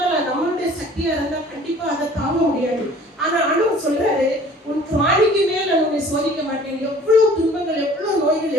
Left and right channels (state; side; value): normal; both; correlation 0.50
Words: நம்மளுடைய சக்தியா இருந்தா கண்டிப்பா அதை தாங்க முடியாது. ஆனா ஆண்டவர் சொல்றாரு, உன் காணிக்கு மேல நான் உன்னை சோதிக்க மாட்டேன். எவ்வளவு துன்பங்கள், எவ்வளவு நோய்கள்,